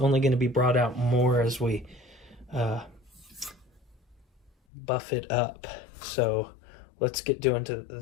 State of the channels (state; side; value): drops out; right; at 4.5 s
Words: going to be brought out more as we buff it up. So let's get doing to